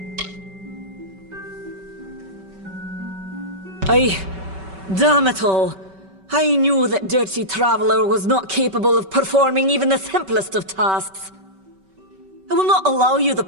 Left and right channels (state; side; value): late; left; 5.2 ms